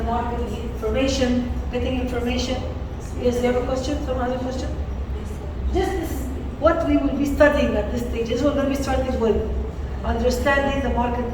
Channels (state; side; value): identical; both; correlation 1.00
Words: market, information, getting information. Yes, you have a question? Someone has a question? This is what we will be studying at this stage. This is what we're going to be starting with. Understanding the